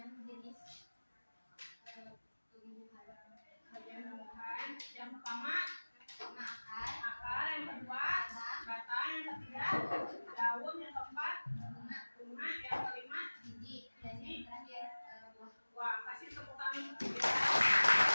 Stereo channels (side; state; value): both; inverted; correlation -1.00